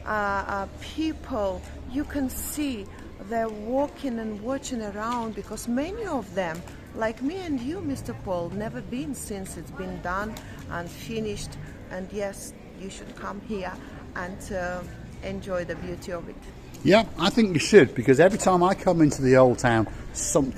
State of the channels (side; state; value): both; identical; correlation 1.00